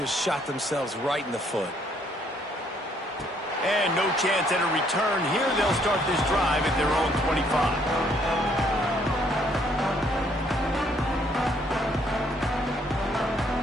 shot themselves right in the foot. And no chance at a return. Here they'll start this drive at their own 25.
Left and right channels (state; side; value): normal; both; correlation 0.67